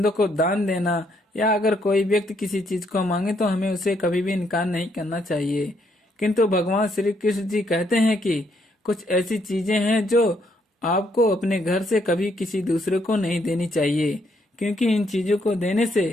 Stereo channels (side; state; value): both; normal; correlation 0.73